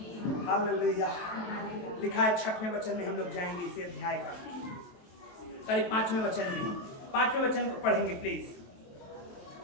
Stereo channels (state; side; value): late; right; 23 ms